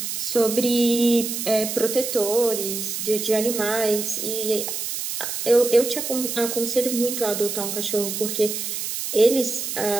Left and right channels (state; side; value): noise; right; hiss, 4 dB below the sound